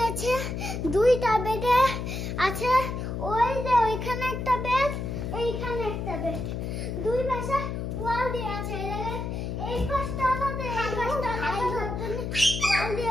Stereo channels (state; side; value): noise; left; hum, 4 dB below the sound